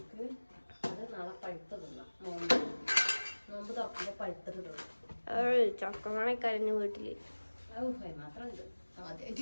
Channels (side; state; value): both; inverted; correlation -1.00